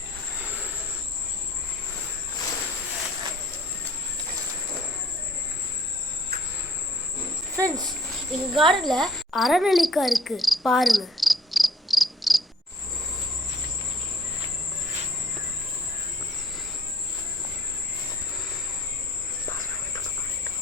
ஃப்ரெண்ட்ஸ், எங்கள் கார்டனில் அரநெல்லிக்காய் இருக்குது, பாருங்கள்.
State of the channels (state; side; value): normal; both; correlation 0.57